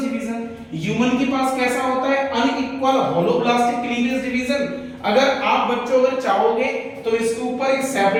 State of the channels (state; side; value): identical; both; correlation 1.00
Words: division. Human के पास कैसा होता है, अनइक्वल होलोब्लास्टिक क्लीवेज डिवीजन। अगर आप बच्चों अगर चाहोगे तो इसके ऊपर एक